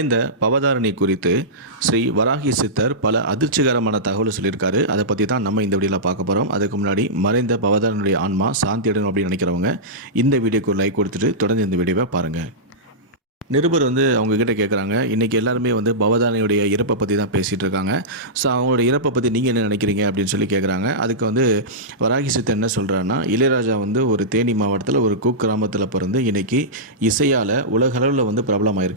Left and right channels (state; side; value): normal; both; correlation -0.14